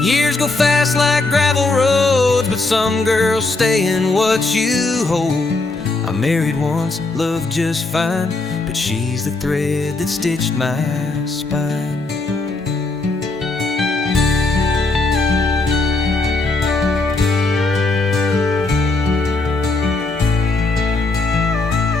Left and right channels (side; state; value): right; quieter; 3.3 dB